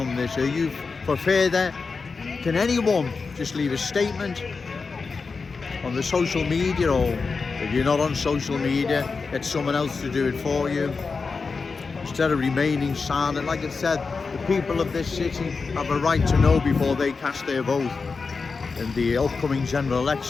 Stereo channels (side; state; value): right; quieter; 4.6 dB